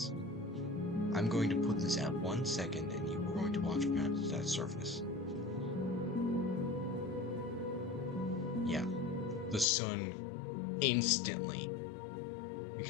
I'm going to put this at 1 second and you are going to watch past that surface. Yeah. The sun instantly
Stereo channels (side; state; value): right; drops out; at 9.7 s